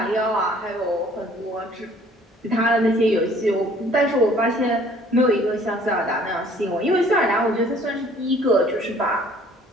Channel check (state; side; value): normal; both; correlation 0.55